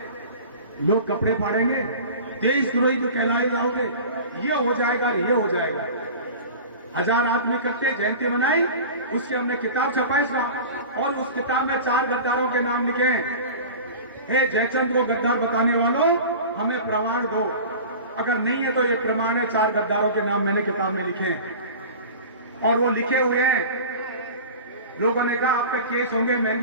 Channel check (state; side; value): inverted; both; correlation -0.36